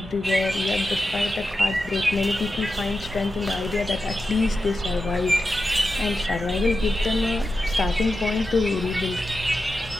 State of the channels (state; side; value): normal; both; correlation 0.91